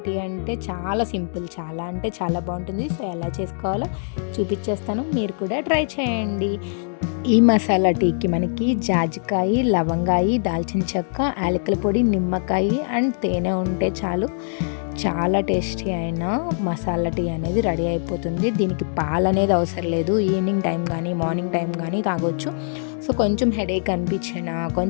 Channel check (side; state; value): right; silent; digital silence